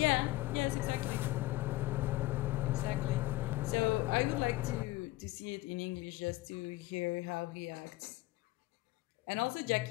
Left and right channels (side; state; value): right; quieter; 18.8 dB